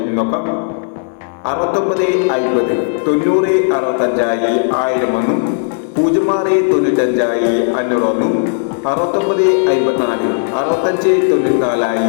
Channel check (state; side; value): silent; right; 65 dB below the other